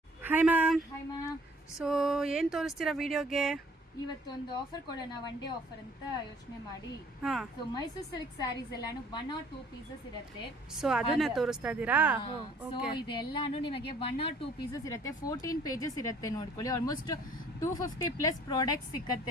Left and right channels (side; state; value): both; normal; correlation 0.56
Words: Hi ma'am. Hi ma'am. So ಏನು ತೋರಿಸ್ತೀರಾ ವಿಡಿಯೋಗೆ? ಇವತ್ತೊಂದು ಆಫರ್ ಕೊಡೋಣ, ಒನ್ ಡೇ ಆಫರ್ ಅಂತ ಯೋಚನೆ ಮಾಡಿ. ಹಾಂ, ಸೊ ಮೈಸೂರು ಸಿಲ್ಕ್ ಸ್ಯಾರೀಸ್ ಎಲ್ಲಾನು 1 or 2 ಪೀಸಸ್ ಇರುತ್ತೆ. ಸೊ ಅದನ್ನೇ ತೋರಿಸ್ತಾ ಇದ್ದೀರಾ? ಸೊ ಇದೆಲ್ಲಾನು ನಿಮಗೆ 1 or 2 ಪೀಸಸ್ ಇರುತ್ತೆ. 14 ಪೇಜಸ್ ಇರುತ್ತೆ, ನೋಡ್ಕೊಳ್ಳಿ. ಆಲ್ಮೋಸ್ಟ್ 250 ಪ್ಲಸ್ ಪ್ರಾಡಕ್ಟ್ಸ್